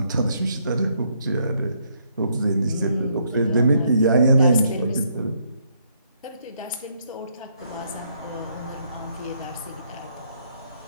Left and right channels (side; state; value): both; inverted; correlation -0.72